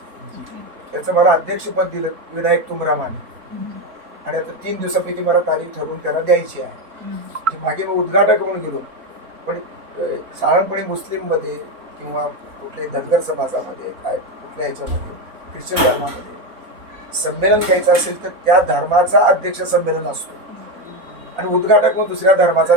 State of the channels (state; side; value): late; left; 4.0 ms